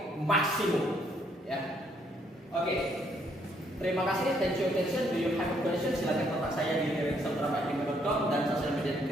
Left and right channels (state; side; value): normal; both; correlation 0.70